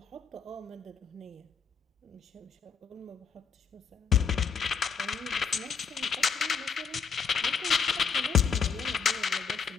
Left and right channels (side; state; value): right; quieter; 6.0 dB